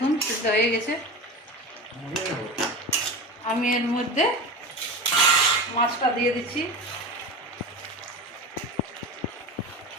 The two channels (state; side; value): normal; both; correlation 0.28